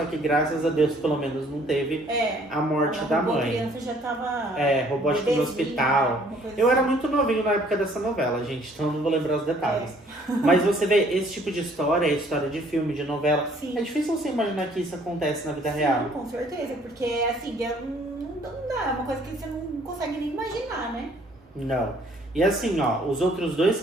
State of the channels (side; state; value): both; normal; correlation 0.60